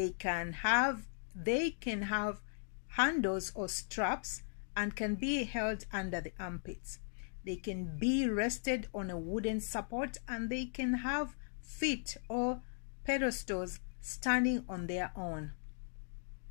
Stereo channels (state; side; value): silent; right; digital silence